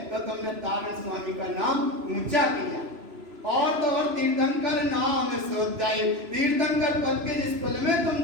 तो तुमने तारण स्वामी का नाम ऊंचा किया। और तो और तीर्थंकर नाम सोचाई, तीर्थंकर पद के जिस कुल में तुम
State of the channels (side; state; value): left; late; 3.0 ms